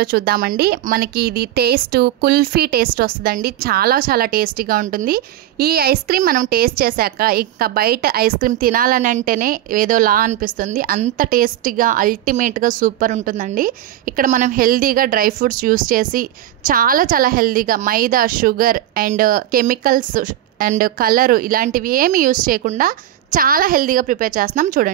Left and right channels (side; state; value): left; quieter; 12.7 dB